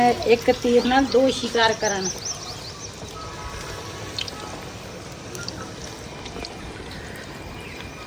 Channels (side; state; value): both; identical; correlation 1.00